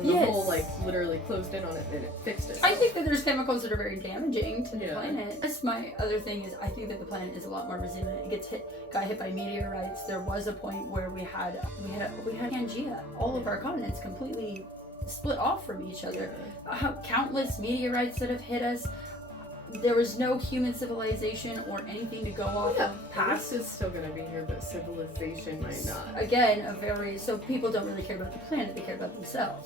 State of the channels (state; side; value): normal; both; correlation 0.51